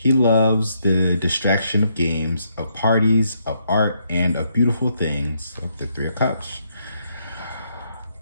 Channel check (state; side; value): inverted; both; correlation -0.76